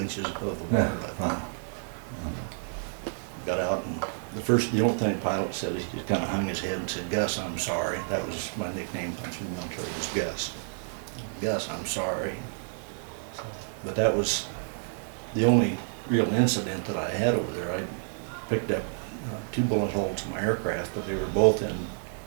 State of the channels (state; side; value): silent; left; 58 dB below the other